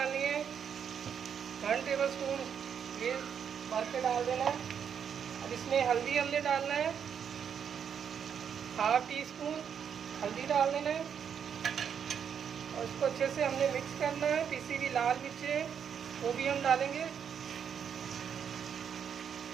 है 1 टेबल स्पून, ये भर के डाल देना है। अब इसमें हल्दी हमने डालना है 1/2 टीस्पून हल्दी डाल देना है, और इसको अच्छे से हमने मिक्स करना है। पिसी हुई लाल मिर्चें वो भी हम डालेंगे,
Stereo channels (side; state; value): left; quieter; 7.8 dB